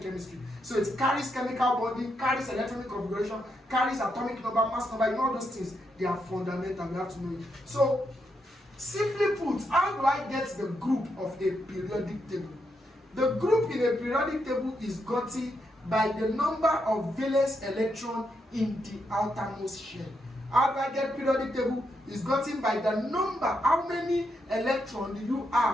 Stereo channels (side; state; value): both; normal; correlation 0.81